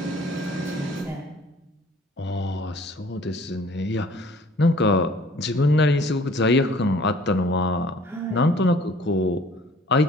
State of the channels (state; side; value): normal; both; correlation 0.53